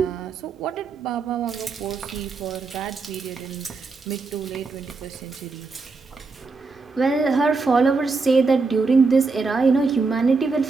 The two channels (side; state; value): left; quieter; 4.2 dB